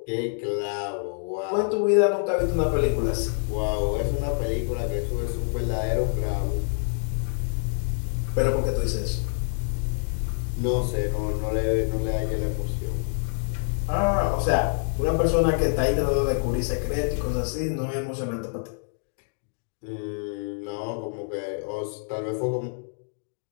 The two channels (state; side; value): silent; right; digital silence